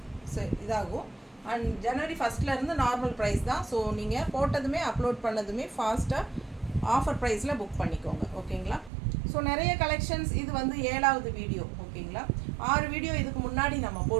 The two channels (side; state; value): left; drops out; at 8.9 s